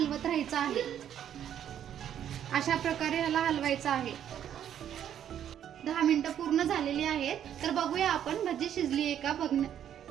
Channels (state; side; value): quieter; left; 9.9 dB